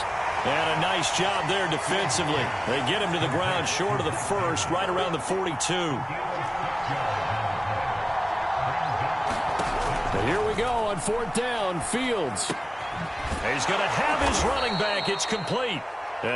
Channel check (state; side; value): identical; both; correlation 1.00